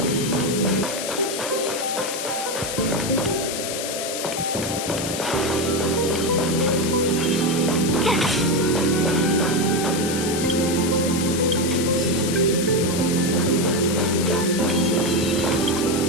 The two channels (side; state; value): left; noise; hiss, 5 dB below the sound